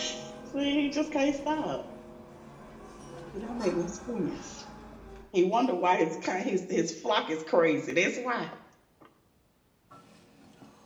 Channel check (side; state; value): both; identical; correlation 1.00